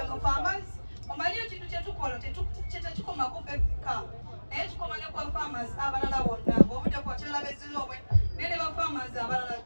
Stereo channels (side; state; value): both; inverted; correlation -1.00